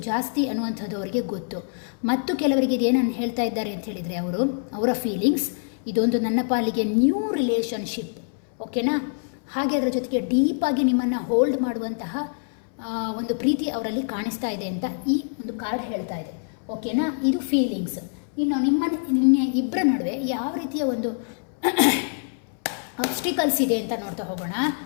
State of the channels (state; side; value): silent; right; 62 dB below the other